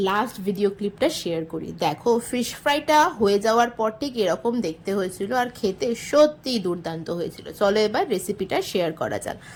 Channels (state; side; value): identical; both; correlation 1.00